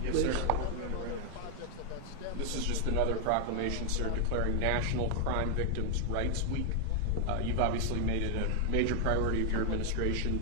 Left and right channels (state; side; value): different; both; correlation 0.00